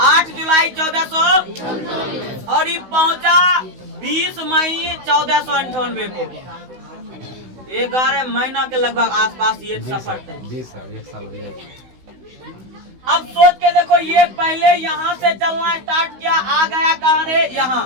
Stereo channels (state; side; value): late; left; 16 ms